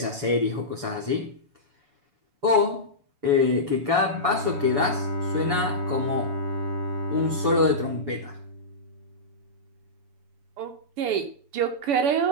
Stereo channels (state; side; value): late; left; 7.0 ms